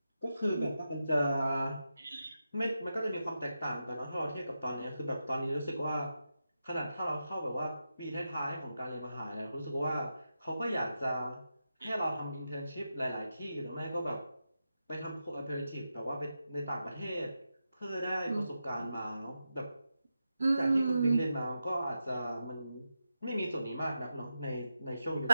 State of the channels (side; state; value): both; inverted; correlation -0.89